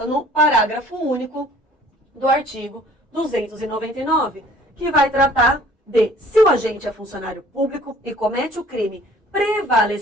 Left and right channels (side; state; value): both; normal; correlation 0.53